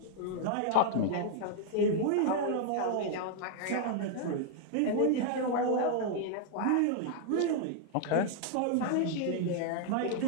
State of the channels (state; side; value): different; both; correlation 0.00